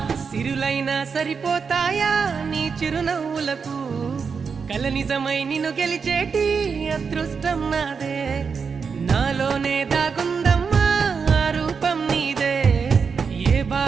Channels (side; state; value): left; quieter; 5.7 dB